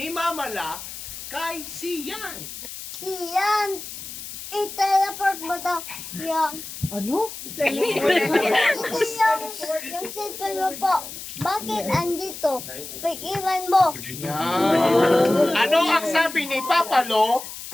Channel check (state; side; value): noise; left; hiss, 11 dB below the sound